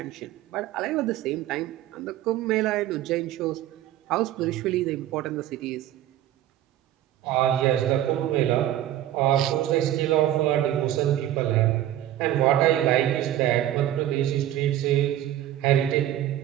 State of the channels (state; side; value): quieter; left; 12.8 dB